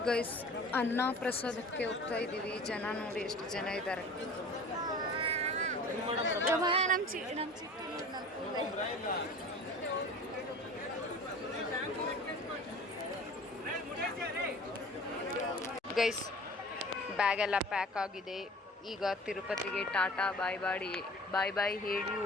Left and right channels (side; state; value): both; normal; correlation 0.42